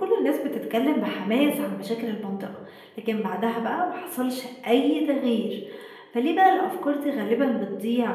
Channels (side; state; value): both; identical; correlation 1.00